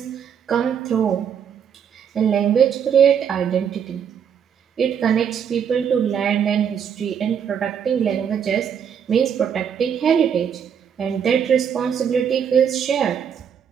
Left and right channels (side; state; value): left; quieter; 7.9 dB